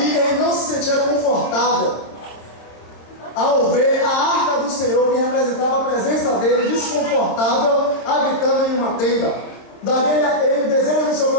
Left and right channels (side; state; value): right; late; 27 ms